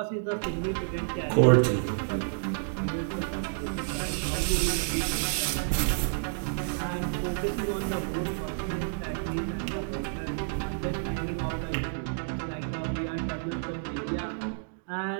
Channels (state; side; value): silent; left; digital silence